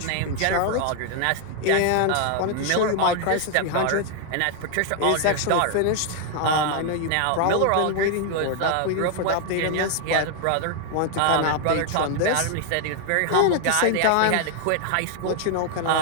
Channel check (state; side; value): different; both; correlation 0.00